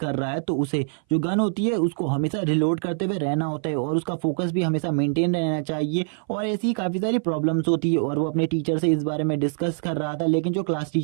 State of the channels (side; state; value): left; silent; 59 dB below the other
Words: रहा है तो उसे जो गन होती है उसको हमेशा रिलोड करते हुए रहना होता है और उसका फोकस भी हमेशा मेंटेन रहना चाहिए। और ऐसी काफी सारी प्रॉब्लम्स होती है और वो अपने टीचर से इस बारे में डिस्कस कर रहा था, लेकिन जो क्लास